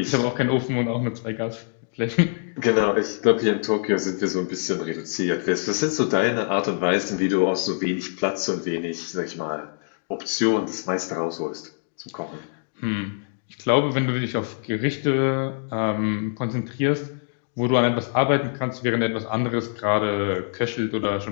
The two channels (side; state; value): right; silent; digital silence